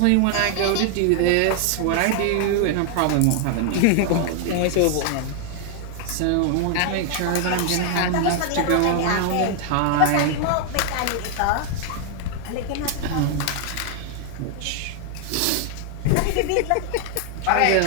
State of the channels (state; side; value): different; both; correlation 0.00